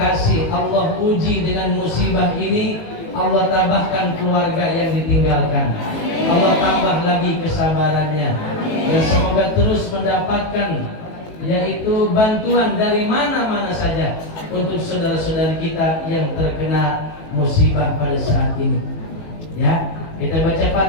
Allah uji dengan musibah ini, Allah tambahkan keluarga yang ditinggalkan, Allah tambah lagi kesabarannya, dan semoga terus mendapatkan yaitu bantuan dari mana-mana saja untuk saudara-saudari kita yang terkena musibah pada saat ini. Ya, kita baca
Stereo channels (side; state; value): right; late; 18 ms